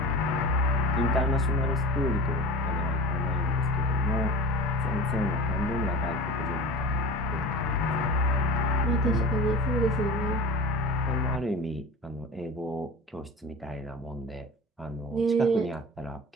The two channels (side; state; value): both; normal; correlation 0.34